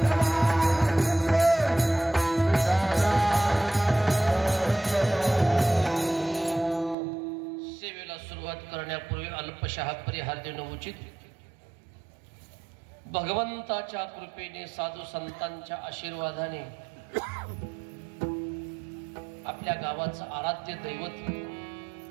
करण्यापूर्वी अल्पशः परिहार देणं उचित. भगवंताच्या कृपेने साधू संतांच्या आशीर्वादाने आपल्या गावाचं आराध्य दैवत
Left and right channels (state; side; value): drops out; left; at 7.0 s